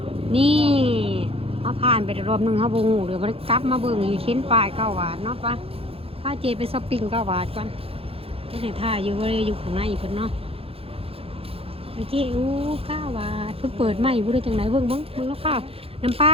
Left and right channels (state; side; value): late; left; 0.28 ms